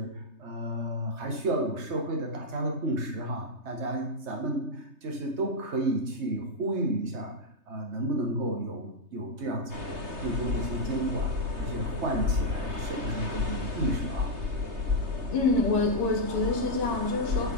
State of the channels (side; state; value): left; late; 3.3 ms